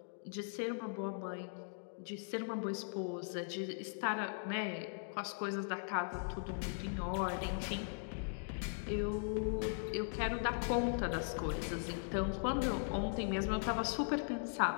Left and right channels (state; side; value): silent; right; digital silence